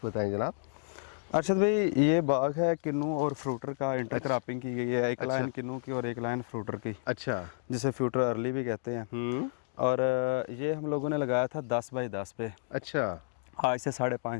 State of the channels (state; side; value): silent; right; digital silence